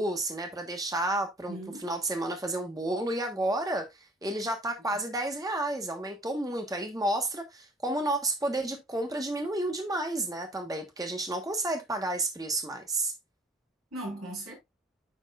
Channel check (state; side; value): normal; both; correlation 0.53